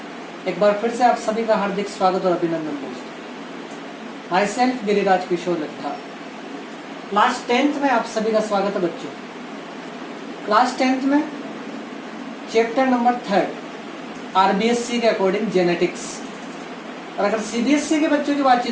एक बार फिर से आप सभी का हार्दिक स्वागत और अभिनंदन दोस्तों। Myself Giriraj Kishore Laddha. Class 10th में आप सभी का स्वागत है बच्चों। क्लास 10th में चैप्टर नंबर 3 आरबीएससी के अकॉर्डिंग जेनेटिक्स। और अगर सीबीएसई के बच्चों की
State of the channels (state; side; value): identical; both; correlation 1.00